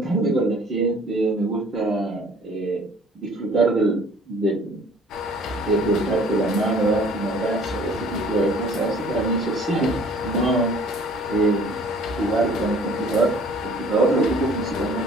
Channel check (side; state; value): both; normal; correlation 0.53